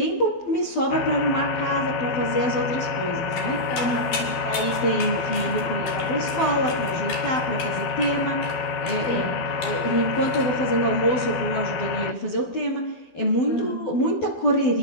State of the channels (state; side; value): late; right; 12 ms